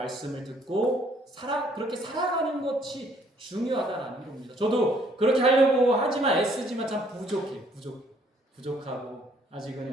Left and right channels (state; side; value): normal; both; correlation 0.64